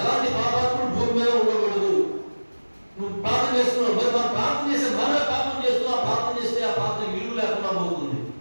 పాపాత్ముడు భూమి మీద ఉండకూడదు. నువ్వు ప్రార్థన చేస్తున్నావు, మరి మనం ప్రార్థన చేస్తే మనమే పాపం చేస్తున్నావు. ప్రార్థన చేస్తే ఆ ప్రార్థన విలువ లేకుండా పోతుంది.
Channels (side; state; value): both; inverted; correlation -1.00